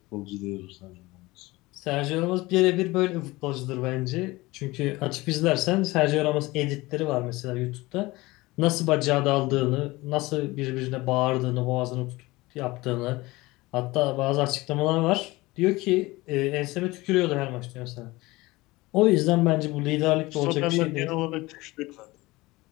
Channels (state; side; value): quieter; right; 20.9 dB